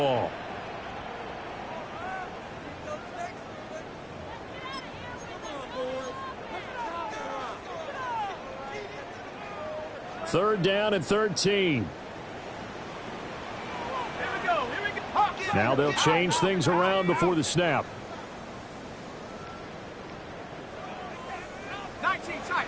Third down and 13. Now they'll change things around before the snap.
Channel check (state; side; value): identical; both; correlation 1.00